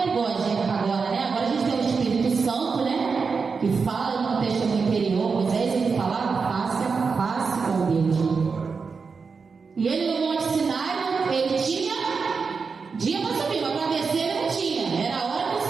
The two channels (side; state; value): left; quieter; 5.1 dB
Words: é igual a gente agora, né? Agora a gente tem o Espírito Santo, né? Que fala no contexto interior. Moisés ele falava face a face com Deus. E ele no Monte Sinai, ele tinha dia para subir, mas para descer ele não tinha. Era a hora que o